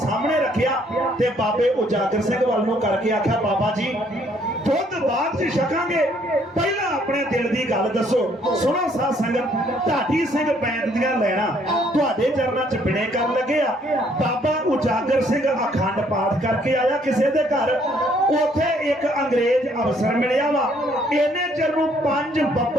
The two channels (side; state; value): both; normal; correlation 0.65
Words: रखिया ते बाबे उजागर सिंह वाल नूं करके आख्या बाबा जी दुध बाद च छकांगे, पहला अपने दिल की गल दसो। सुनो साध संगत, ढाडी सिंह पैंट दियां लैणा तुहाडे चरनां च बिणे कर लगे आ। बाबा उजागर सिंह अखंड पाठ करके आया किसी दे घर, उथे एक अंग्रेज अफसर मिलिया वा। इन्ने चिर नूं 5